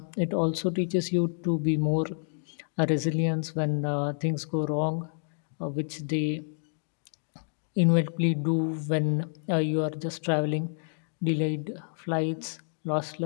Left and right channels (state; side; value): silent; right; digital silence